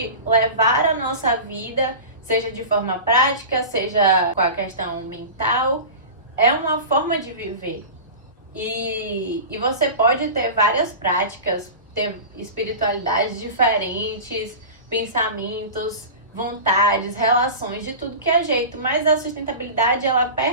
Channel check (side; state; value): both; inverted; correlation -0.31